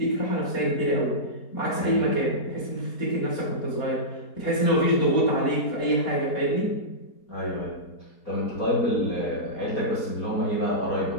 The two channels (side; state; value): right; late; 4.3 ms